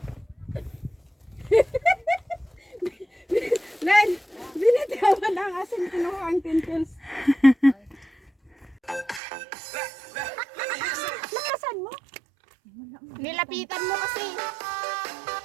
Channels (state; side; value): drops out; left; at 9.2 s